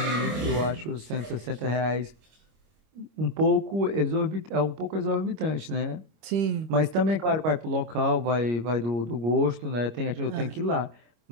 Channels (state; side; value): late; left; 25 ms